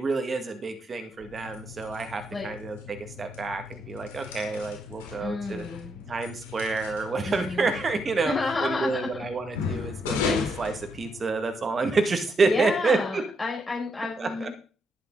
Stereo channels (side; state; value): both; normal; correlation 0.79